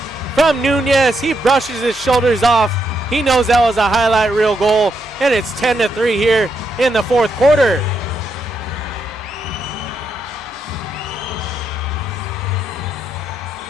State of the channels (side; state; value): both; normal; correlation 0.80